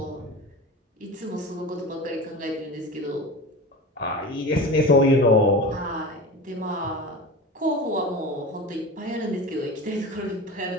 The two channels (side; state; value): both; normal; correlation 0.31